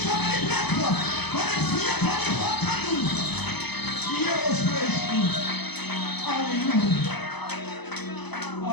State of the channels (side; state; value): right; late; 0.99 ms